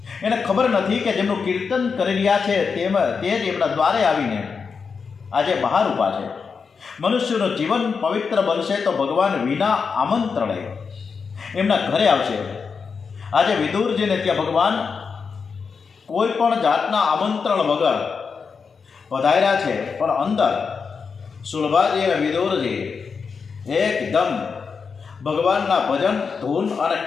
નથી કે જેમનું કીર્તન કરી રહ્યા છે તે જ એમના દ્વારે આવીને આજે બહાર ઊભા છે। મનુષ્યનું જીવન પવિત્ર બનશે તો ભગવાન વિના આમંત્રણે એમના ઘરે આવશે। આજે વિદુરજીને ત્યાં ભગવાન કોઈ પણ જાતના આમંત્રણ વગર પધાર્યા છે, પણ અંદર સુલભાજી અને વિદુરજી એકદમ ભગવાનના ભજન ધૂન અને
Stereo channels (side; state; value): right; quieter; 5.5 dB